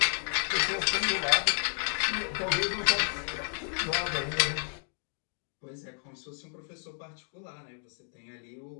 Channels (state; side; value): silent; right; digital silence